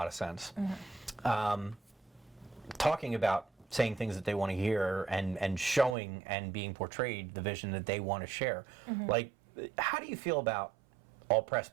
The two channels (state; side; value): drops out; left; at 6.0 s